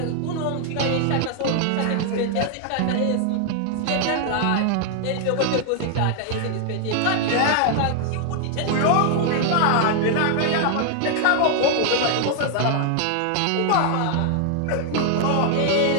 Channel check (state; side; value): different; both; correlation 0.00